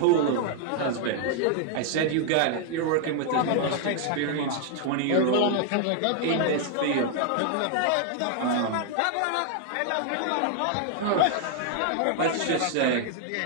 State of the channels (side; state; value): both; different; correlation 0.00